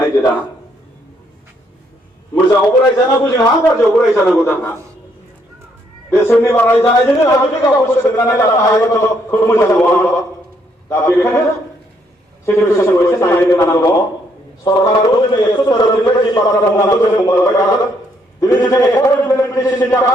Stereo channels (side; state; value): both; normal; correlation 0.71